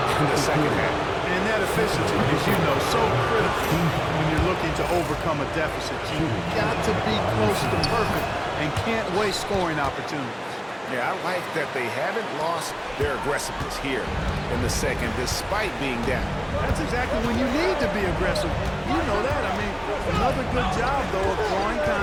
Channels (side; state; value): both; identical; correlation 1.00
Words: in the second half. And that efficiency, as you know, so critical when you're looking to overcome a deficit. You've got to be close to perfect and can't waste scoring opportunities. Yeah, I like that they haven't lost their aggressiveness here in the second, despite being down. That's exactly when you need to be aggressive. You know that. I mean, another good job, though, of drawing